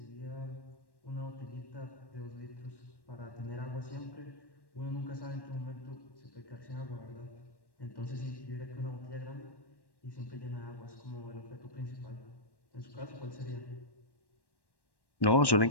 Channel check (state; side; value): late; right; 1.1 ms